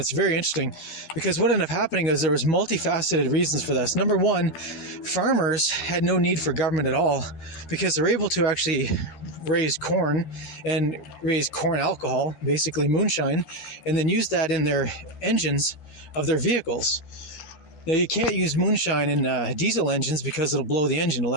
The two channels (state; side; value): late; right; 12 ms